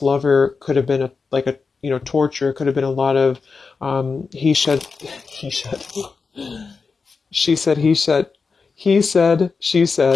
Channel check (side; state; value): right; quieter; 4.8 dB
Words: could have been torture. It could have been a lot of, she said, he said, she